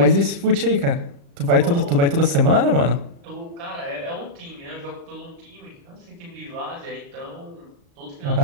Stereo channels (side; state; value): left; late; 35 ms